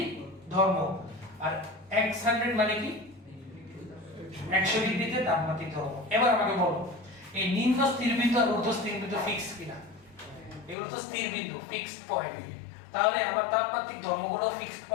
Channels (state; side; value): drops out; right; at 10.8 s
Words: ধর্ম, আর x 100 মানে কি 100 ডিগ্রিতে তাপমাত্রিক ধর্ম। এবার আমাকে বলো এই নিম্ন স্থির বিন্দু আর ঊর্ধ্ব স্থির বিন্দু ফিক্স কিনা, এগুলো তো স্থির বিন্দু, ফিক্সড পয়েন্ট, তাহলে আমার তাপমাত্রিক ধর্মগুলো ফিক্সড